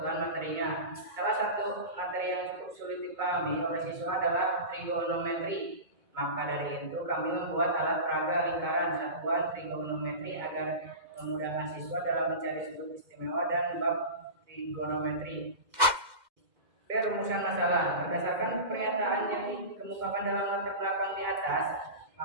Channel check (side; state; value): left; late; 2.1 ms